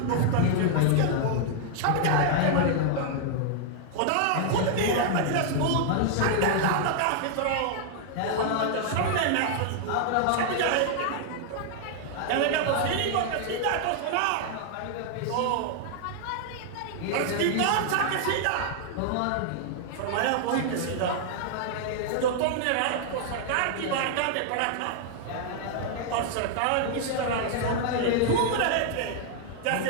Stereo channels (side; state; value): both; different; correlation -0.01